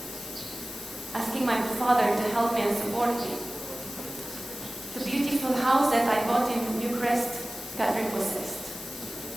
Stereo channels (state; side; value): noise; left; hiss, 10 dB below the sound